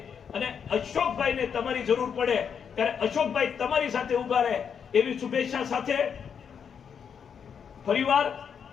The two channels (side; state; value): right; quieter; 7.2 dB